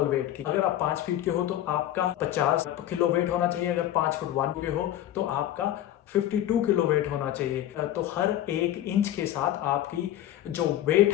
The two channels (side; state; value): right; quieter; 12.6 dB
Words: वेट की। अगर आप 5 फीट के हो तो आपका 50 किलो वेट होना चाहिए। अगर 5 फुट 1 पे हो तो आपका 52 किलो वेट होना चाहिए। तो हर 1 इंच के साथ आपकी जो वेट